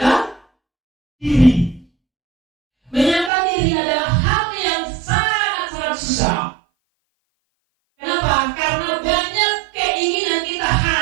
diri. Menyangkal diri adalah hal yang sangat-sangat susah. Kenapa? Karena banyak keinginan kita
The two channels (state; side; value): drops out; left; at 3.3 s